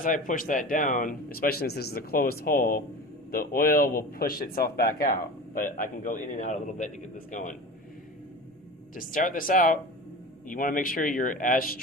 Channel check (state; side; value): normal; both; correlation 0.34